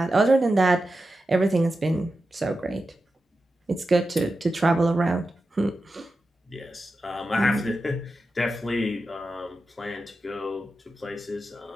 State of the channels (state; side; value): normal; both; correlation 0.91